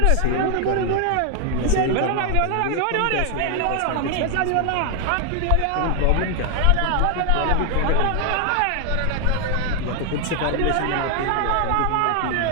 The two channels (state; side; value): different; both; correlation 0.00